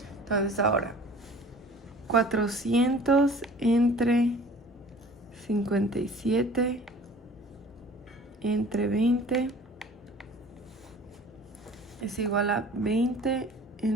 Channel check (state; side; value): normal; both; correlation 0.46